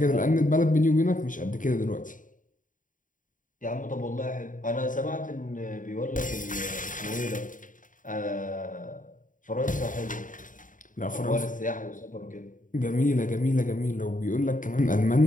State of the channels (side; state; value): right; late; 0.38 ms